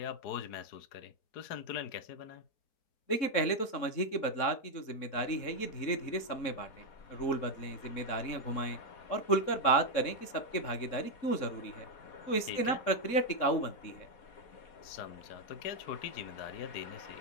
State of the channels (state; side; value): late; right; 3.7 ms